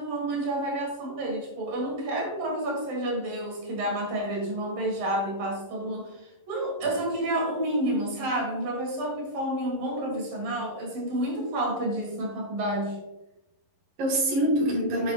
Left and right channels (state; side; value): late; left; 11 ms